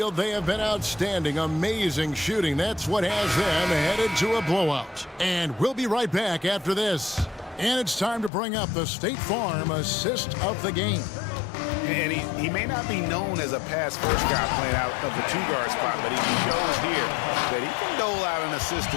they have been outstanding, amazing shooting. That's what has them headed to a blowout. And we'll be right back after this. And it's time to bring up the State Farm assist of the game. And he may not be known as a pass-first guy playing out of the two-guard spot, but he shows here that he can dole out an assist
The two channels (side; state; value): right; drops out; at 8.3 s